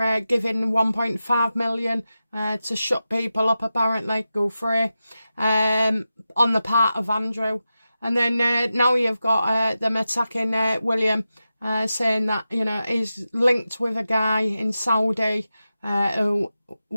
giving 1.5 million to shut people up, apparently, go free, on the part of Andrew. And then now you've got them attacking William, saying that, you know, he's linked with a guy in Saudi who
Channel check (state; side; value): inverted; both; correlation -0.92